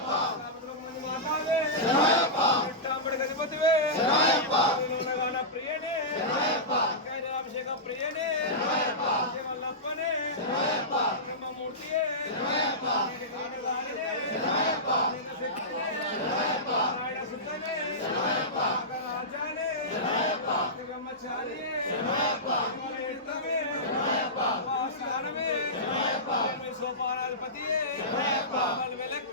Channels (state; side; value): normal; both; correlation -0.16